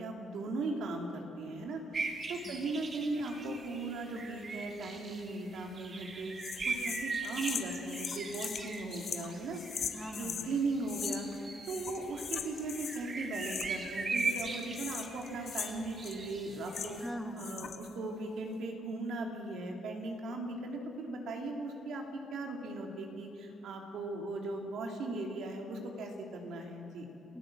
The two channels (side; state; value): both; normal; correlation 0.72